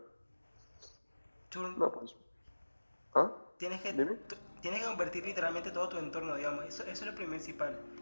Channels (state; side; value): inverted; both; correlation -1.00